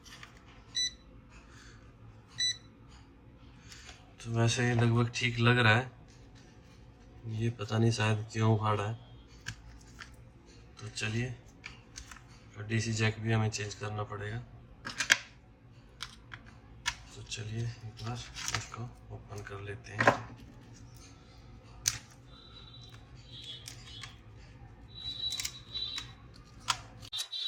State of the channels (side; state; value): both; identical; correlation 1.00